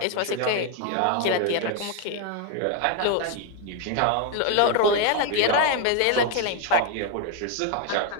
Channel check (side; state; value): both; different; correlation 0.01